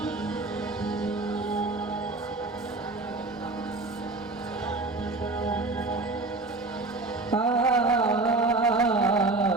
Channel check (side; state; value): left; quieter; 3.3 dB